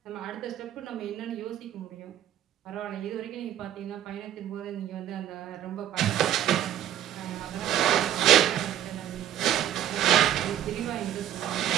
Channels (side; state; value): left; quieter; 11.4 dB